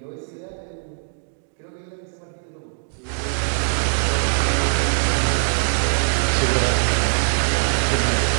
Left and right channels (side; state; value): left; silent; digital silence